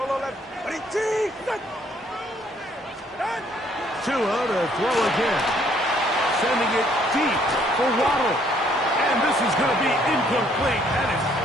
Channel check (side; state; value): both; normal; correlation 0.65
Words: left. Tua to throw again. Sending it deep for Waddle. And this is going to be incomplete. That is